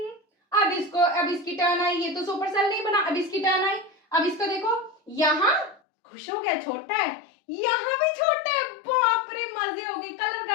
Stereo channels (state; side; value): drops out; right; at 5.8 s